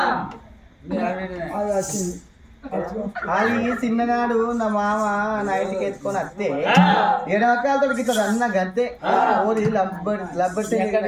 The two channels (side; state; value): both; identical; correlation 1.00